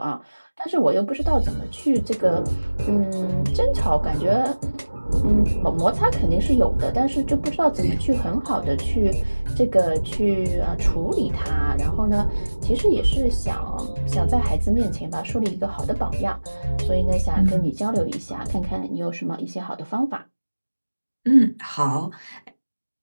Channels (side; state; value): both; inverted; correlation -1.00